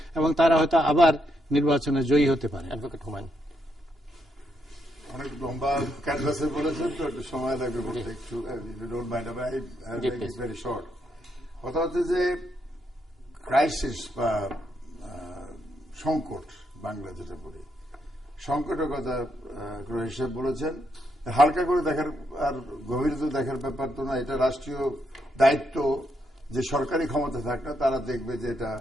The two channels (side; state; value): both; normal; correlation 0.78